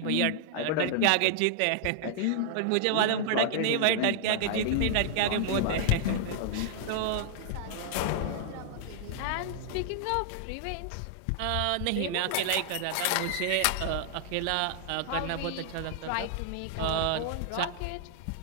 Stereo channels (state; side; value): different; both; correlation -0.01